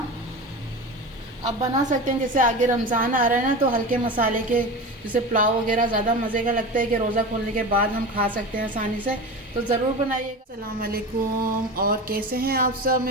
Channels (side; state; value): both; normal; correlation 0.28